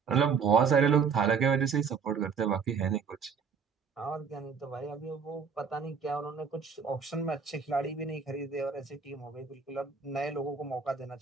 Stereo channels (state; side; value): quieter; left; 5.9 dB